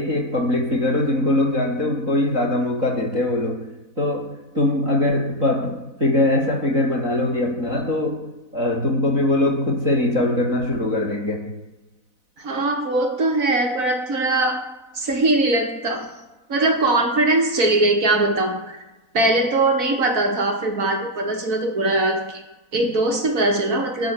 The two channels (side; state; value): left; late; 4.0 ms